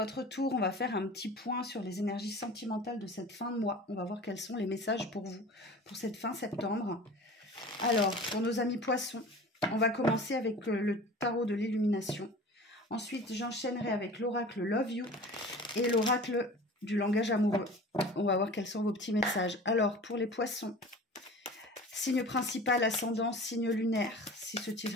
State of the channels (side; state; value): both; normal; correlation 0.39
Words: tour. On va faire un petit point sur les énergies sentimentales de cette fin de mois. On va voir quels sont les messages pour vous, pour cette fin septembre. Alors, pour nos amis poissons, on va commencer avec le tarot de l'illumination. Ensuite, j'enchaînerai avec l'oracle Love You et l'oracle du langage amoureux. On va voir quels sont vos petits messages. Alors, pour les poissons, signe principal, ascendant, signe lunaire. Si ce